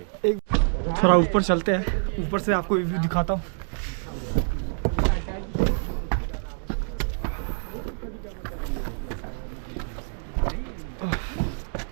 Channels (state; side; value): silent; left; 57 dB below the other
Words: थोड़ा ऊपर चलते हैं, ऊपर से आपको व्यू दिखाता हूँ।